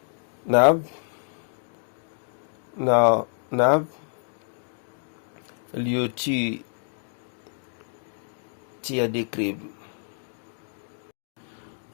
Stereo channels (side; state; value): right; silent; digital silence